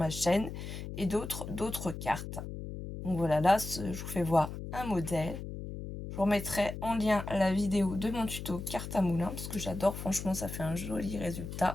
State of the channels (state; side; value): noise; left; hum, 8 dB below the sound